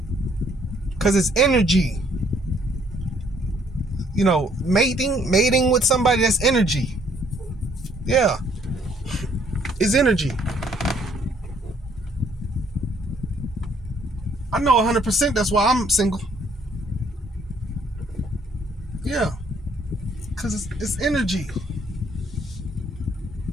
because it's energy. Mating with somebody, that's energy. Yeah, it's energy. I know 100% that's why I'm single. Yeah, because it's energy.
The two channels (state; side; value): normal; both; correlation 0.65